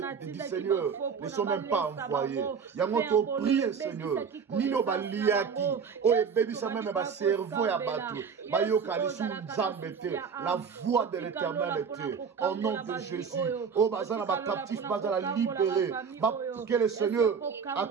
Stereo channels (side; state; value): left; quieter; 6.2 dB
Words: Seigneur ne sont même pas envoyés. Yangoto prier Seigneur. Nino baliaki. O baby ça même ba cerveau ya bateau. Ba yo kalisu nzambete. La voix de l'Éternel était. Au nom de Jésus. O bazana ba captif bazana libéré. Que le Seigneur